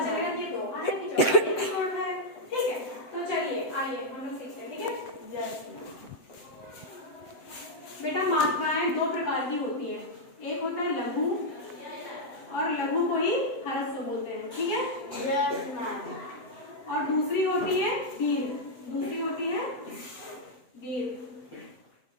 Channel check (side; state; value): right; late; 7.8 ms